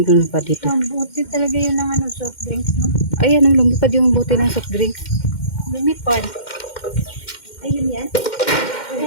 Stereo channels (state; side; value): late; right; 2.1 ms